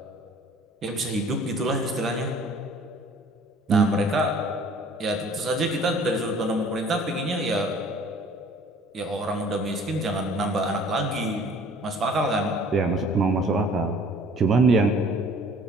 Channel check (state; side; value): normal; both; correlation 0.52